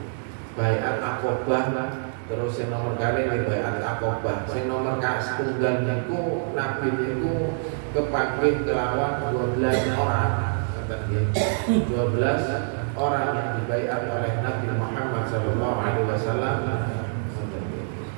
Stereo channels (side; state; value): left; silent; 61 dB below the other